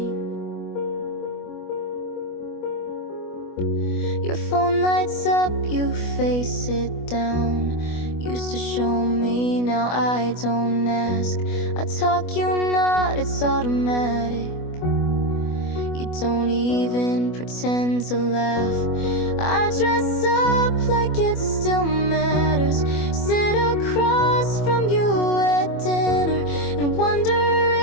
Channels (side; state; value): right; late; 25 ms